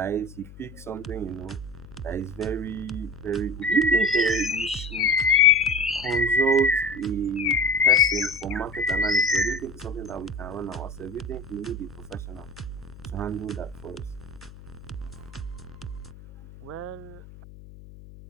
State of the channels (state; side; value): noise; left; hum, 18 dB below the sound